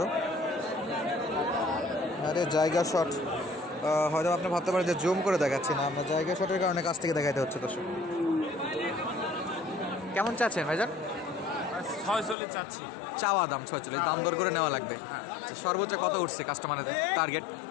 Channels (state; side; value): drops out; right; at 12.4 s